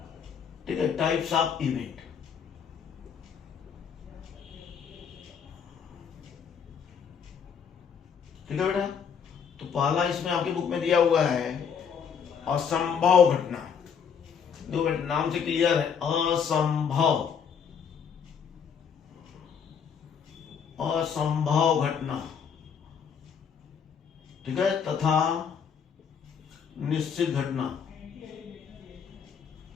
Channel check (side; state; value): right; quieter; 7.0 dB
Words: ठीक है, टाइप्स ऑफ इवेंट। ठीक है बेटा, तो पहला इसमें आपकी बुक में दिया हुआ है असंभव घटना। दो बेटा नाम से क्लियर है, असंभव, असंभव घटना। ठीक है, तथा निश्चित घटना।